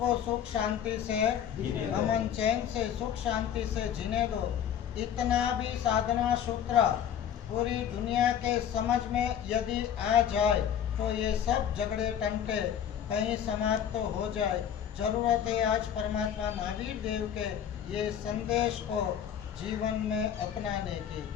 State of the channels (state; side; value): quieter; right; 9.3 dB